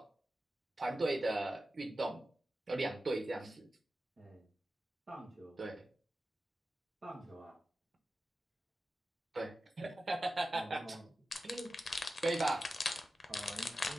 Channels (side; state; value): both; normal; correlation 0.93